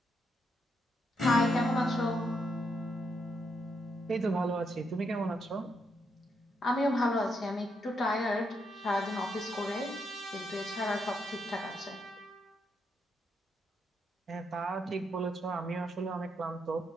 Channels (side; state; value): both; normal; correlation 0.79